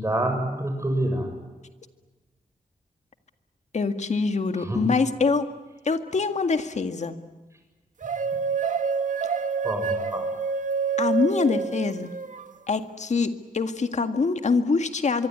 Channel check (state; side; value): normal; both; correlation 0.56